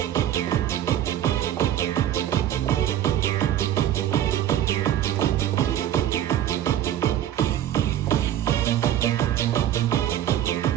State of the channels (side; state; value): left; quieter; 11.4 dB